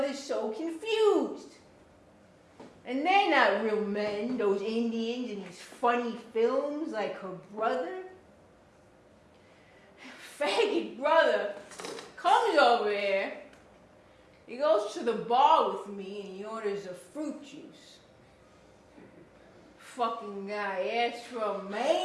so confused. And they're not real men, those Indians in these funny films like her brother. Faggot brother comes over here. He goes to the bar with me and he orders a fruit juice. Fucking guy asks for a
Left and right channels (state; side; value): identical; both; correlation 1.00